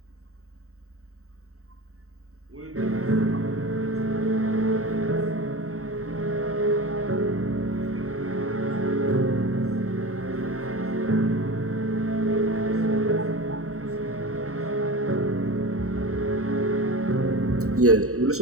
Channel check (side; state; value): left; late; 0.64 ms